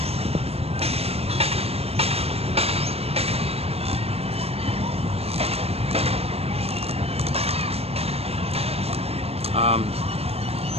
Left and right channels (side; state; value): left; late; 0.29 ms